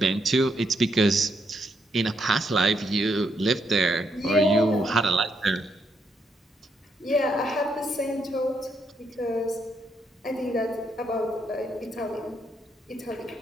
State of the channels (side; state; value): both; normal; correlation 0.77